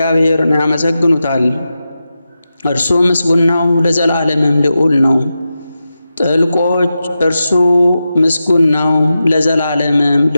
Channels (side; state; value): both; inverted; correlation -0.91